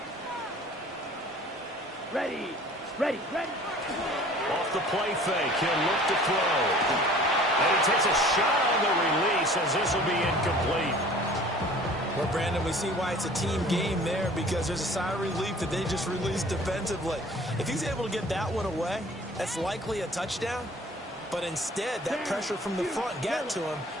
Ready. Ready. Ready. Off the play fake, he'll look to throw. And he takes a shot on the release as this will be incomplete. Well, Brandon, we see why it's a team game there because there's a sigh of relief that they just released defensively. If he's able to get that one away, that's likely a touchdown. But instead, that pressure from the front got to him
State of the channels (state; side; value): normal; both; correlation 0.49